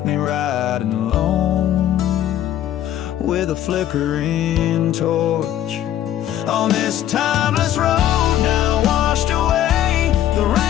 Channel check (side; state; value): right; quieter; 11.8 dB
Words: me riding alone with a flickering torch. On this timeless road now washed away, the